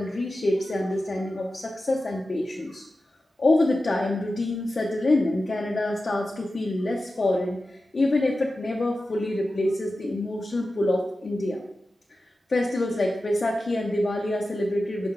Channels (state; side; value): normal; both; correlation 0.93